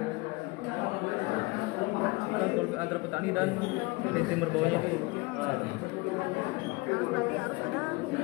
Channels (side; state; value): right; quieter; 24.6 dB